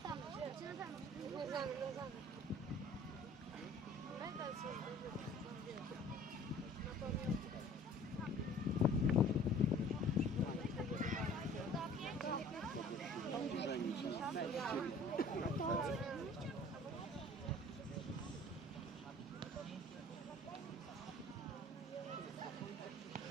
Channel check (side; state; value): both; normal; correlation 0.49